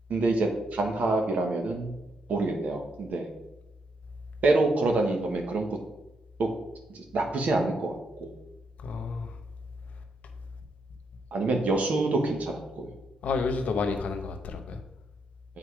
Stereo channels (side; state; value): both; normal; correlation 0.79